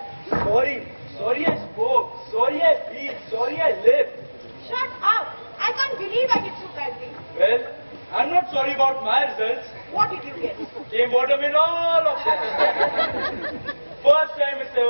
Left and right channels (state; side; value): inverted; both; correlation -1.00